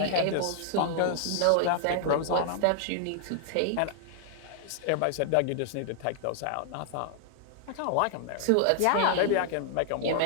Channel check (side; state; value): both; different; correlation 0.00